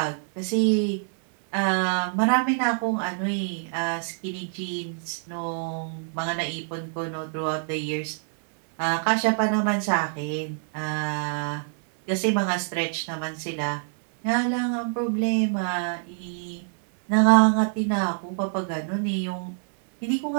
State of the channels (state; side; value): silent; left; 61 dB below the other